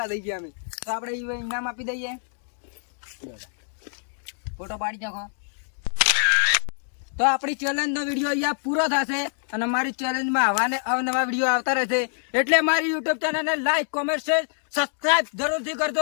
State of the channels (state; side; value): silent; right; 62 dB below the other